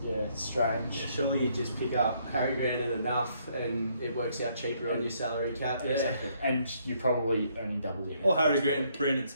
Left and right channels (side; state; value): both; inverted; correlation -0.70